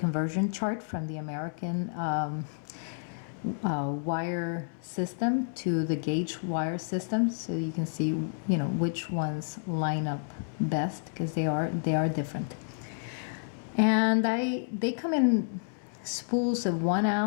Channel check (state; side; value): silent; right; 58 dB below the other